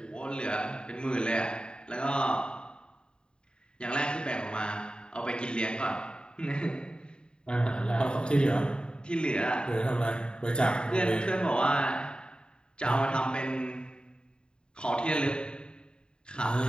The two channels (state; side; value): late; right; 0.050 ms